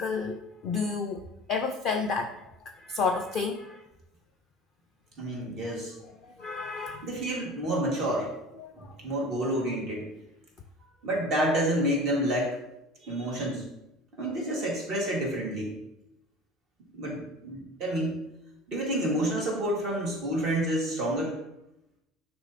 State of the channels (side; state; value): both; normal; correlation 0.39